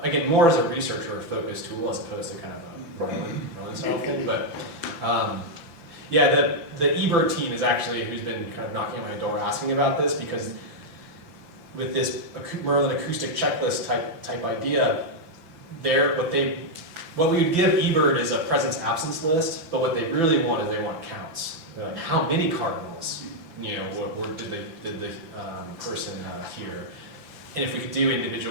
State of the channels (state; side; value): late; left; 6.0 ms